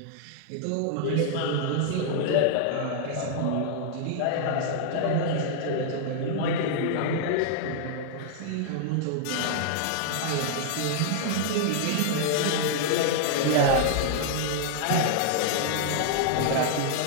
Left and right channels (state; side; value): different; both; correlation -0.01